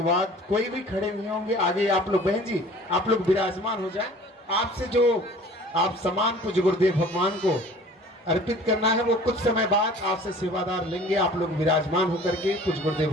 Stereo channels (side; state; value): both; normal; correlation 0.47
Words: बाद कोई भी खड़े नहीं होंगे। आगे आप लोग बहन जी आप लोग विराजमान हो जाएं। आपसे जो आप सम्मान पूज्य गुरुदेव भगवान को अर्पित करना है वो कुछ समय बाद आपसे सेवादार लेंगे। आप लोग विराजमान होकर के पूज्य गुरुदेव